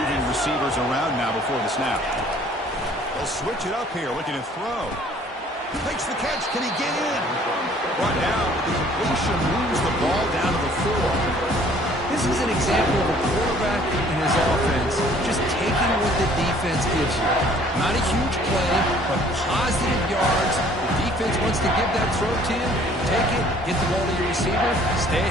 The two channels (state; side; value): normal; both; correlation 0.56